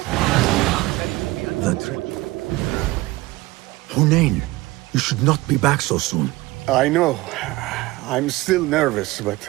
Hunain, you should not be back so soon. I know. I'm still nervous, but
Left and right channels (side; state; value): left; quieter; 20.2 dB